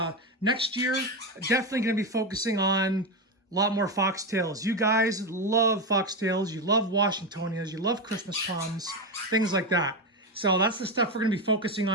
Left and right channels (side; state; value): both; normal; correlation 0.12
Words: next year, definitely going to be focusing on a lot more foxtails. You guys love foxtails. You love Washingtonias. You love Christmas palms, things like that. So that's the stuff we're going to be focusing